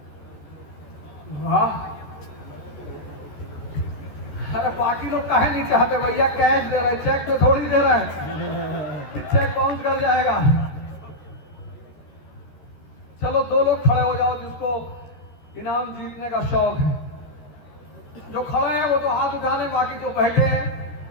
वाह। अरे बाकी लोग काहे नहीं चाहते भैया, कैश दे रहे, चेक तो थोड़ी दे रहे हैं, चेक बाउंस कर जाएगा। चलो 2 लोग खड़े हो जाओ जिसको इनाम जीतने का शौक है। जो खड़े हैं वो तो हाथ उठाने, बाकी जो बैठे हैं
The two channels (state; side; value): late; right; 13 ms